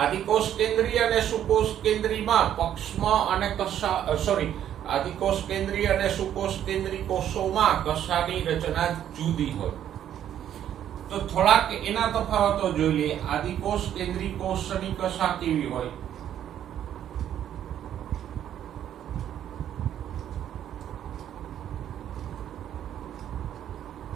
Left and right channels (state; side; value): quieter; left; 10.5 dB